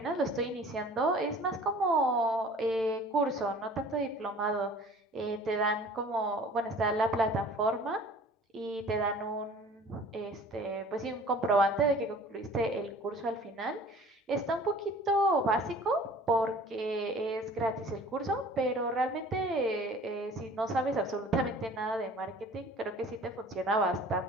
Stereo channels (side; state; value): both; normal; correlation 0.47